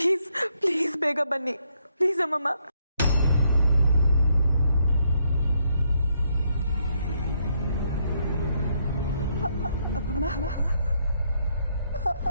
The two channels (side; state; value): both; inverted; correlation -0.74